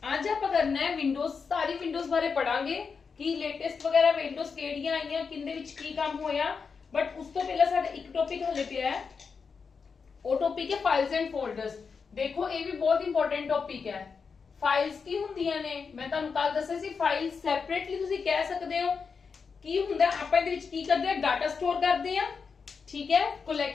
ਅੱਜ ਆਪਾਂ ਕਰਨਾ ਹੈ ਵਿੰਡੋਜ਼, ਸਾਰੀ ਵਿੰਡੋਜ਼ ਬਾਰੇ ਪੜਾਂਗੇ ਕਿ ਲੇਟੈਸਟ ਵਗੈਰਾ ਵਿੰਡੋਜ਼ ਕਿਹੜੀਆਂ ਆਈਆਂ, ਕਿੰਦੇ ਵਿੱਚ ਕੀ ਕੰਮ ਹੋਇਆ। ਬਟ ਉਸ ਤੋਂ ਪਹਿਲਾਂ ਸਾਡਾ ਇੱਕ ਟੌਪਿਕ ਹਲੇ ਪਿਆ ਹੈ, ਉਹ ਟੌਪਿਕ ਹੈ ਫਾਈਲਸ ਐਂਡ ਫੋਲਡਰਸ। ਦੇਖੋ ਇਹ ਵੀ ਬਹੁਤ ਇੰਪੋਰਟੈਂਟ ਟੌਪਿਕ ਹੈ। ਫਾਈਲਸ ਕੀ ਹੁੰਦੀਆਂ ਨੇ, ਮੈਂ ਤੁਹਾਨੂੰ ਕੱਲ ਦੱਸਿਆ ਸੀ। ਫਾਈਲ ਸੈਪਰੇਟਲੀ ਤੁਸੀਂ ਕਹਿ ਸਕਦੇ ਹੋ ਕੀ ਹੁੰਦਾ। ਆਪਾਂ ਇਹਦੇ ਵਿੱਚ ਕੀ ਕਰਦੇ ਆ, ਡਾਟਾ ਸਟੋਰ ਕਰਦੇ ਆ। ठीक है,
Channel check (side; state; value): right; quieter; 5.5 dB